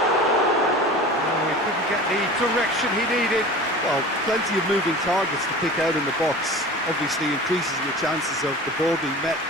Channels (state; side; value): normal; both; correlation 0.37